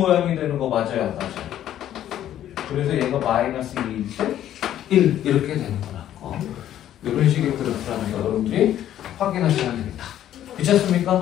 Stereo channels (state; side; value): quieter; right; 11.6 dB